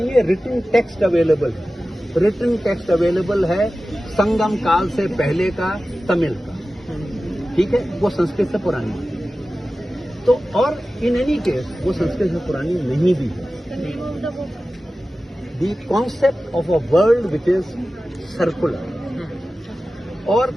है। रिटन टेक्स्ट अवेलेबल है, रिटन टेक्स्ट अवेलेबल है संगम काल से पहले का तमिल का। ठीक है, वो संस्कृत से पुरानी है। तो और इन एनी केस वो संस्कृत से पुरानी नहीं भी है। The concept of a world which is circular, और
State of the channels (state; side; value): normal; both; correlation 0.95